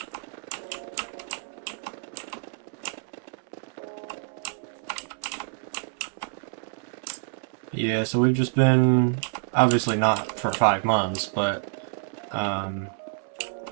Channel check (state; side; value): silent; left; 60 dB below the other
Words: Yeah, so we've just been, obviously not for 5 months, but